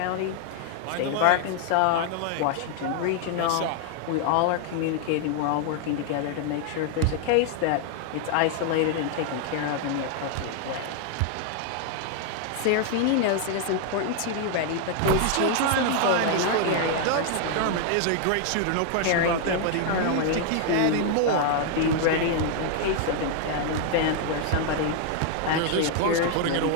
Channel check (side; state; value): both; different; correlation 0.00